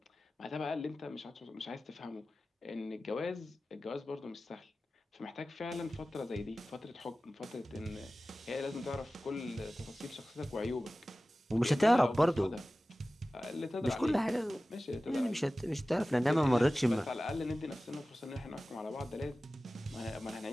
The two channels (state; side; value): normal; both; correlation 0.96